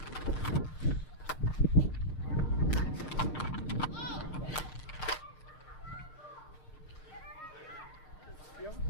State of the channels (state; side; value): late; right; 6.5 ms